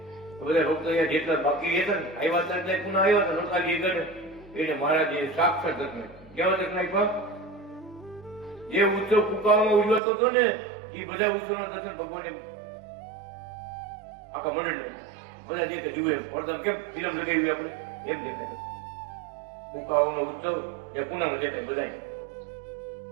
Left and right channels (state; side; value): drops out; left; at 10.0 s